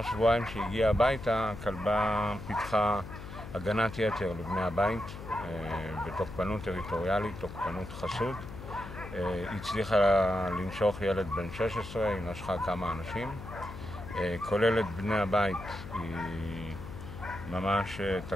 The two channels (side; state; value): left; noise; hum, 11 dB below the sound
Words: שבועיים שהגיעה הביתה, הכלבה פיתחה הגנת יתר לבני הבית בתוקפנות טריטוריאלית, תוקפנות חסות. היא הצליחה לנשוך ילד בן 16, היא נשכה כמה אנשים. כולל את בני הבית, היא ממש